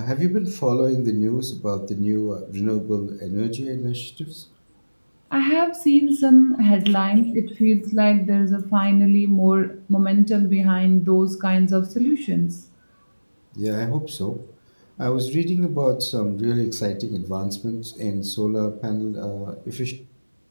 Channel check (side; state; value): both; inverted; correlation -1.00